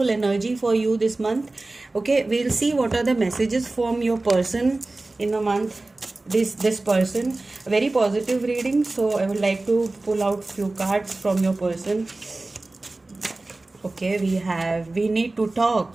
energy for you this month. Okay, we'll see what are the messages from your person in the month. This person, very positive reading, so I would like to pull out few cards from your person. Okay, we need to talk.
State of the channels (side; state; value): left; quieter; 3.1 dB